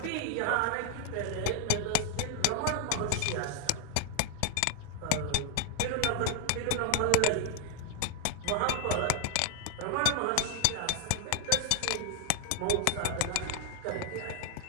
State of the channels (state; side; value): different; both; correlation 0.00